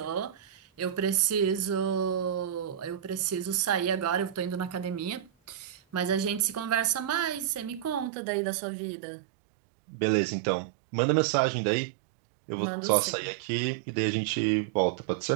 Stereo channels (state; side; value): drops out; left; at 8.1 s